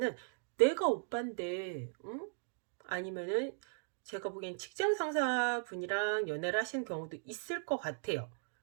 내가 오빠인데, 응? 아니면은 제가 보기엔 직장 상사분이랑 연애를 하시는 경우도 있을 것 같아요.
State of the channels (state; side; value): silent; left; digital silence